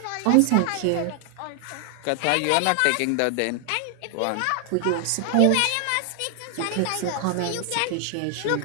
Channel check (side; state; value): both; different; correlation 0.00